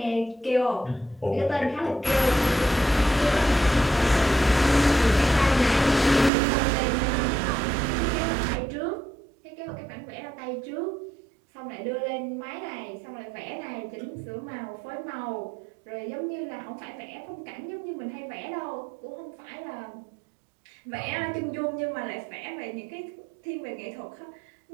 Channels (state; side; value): drops out; left; at 6.3 s